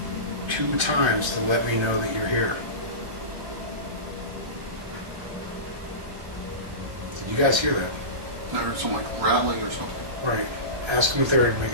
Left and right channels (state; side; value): late; left; 1.3 ms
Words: 2 times to let me know that you're here. Did you guys hear that? I heard some like rattling or something. Right. Ask them if they're